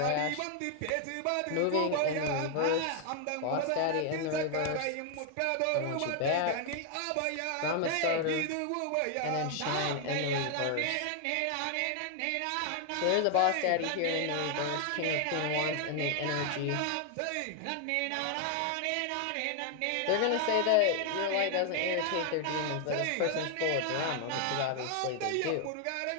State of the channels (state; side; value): different; both; correlation 0.00